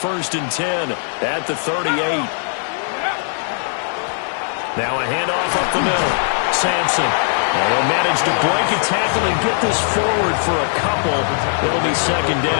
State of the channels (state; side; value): silent; right; 61 dB below the other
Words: and 10 at the 38. Now a handoff up the middle. Sampson. They'll manage to break a tackle and get this forward for a couple. It'll be 2nd